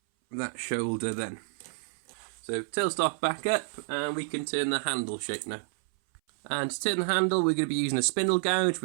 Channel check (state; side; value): silent; left; 58 dB below the other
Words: that shoulder then. So tailstock back up, and we can turn the handle shape now. And to turn the handle, we're going to be using a spindle gouge